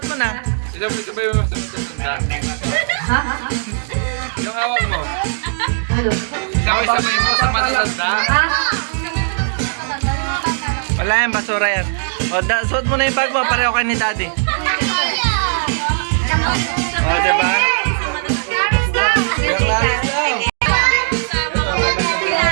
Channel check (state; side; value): silent; left; digital silence